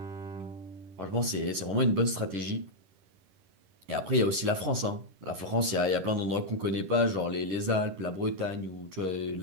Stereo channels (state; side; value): late; left; 11 ms